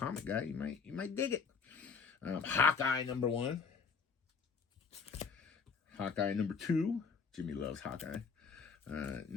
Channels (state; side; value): quieter; right; 5.5 dB